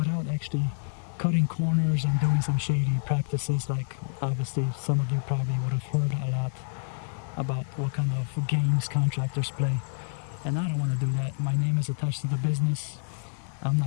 actually cutting corners and doing some shady practices. Like obviously some of you probably would have heard a lot about what kind of games contractors play, and I don't want to do that. My name is attached to the business. I'm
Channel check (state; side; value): silent; right; 59 dB below the other